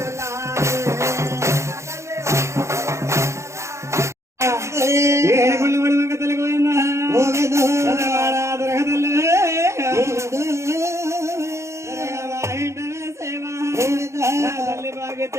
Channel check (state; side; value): late; left; 0.14 ms